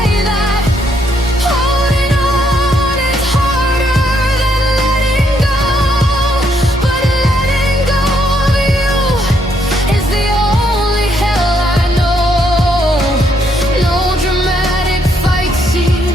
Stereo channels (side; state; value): both; normal; correlation 0.73